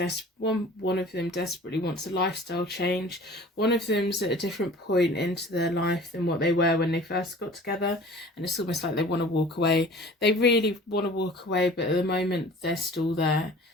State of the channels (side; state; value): both; normal; correlation 0.45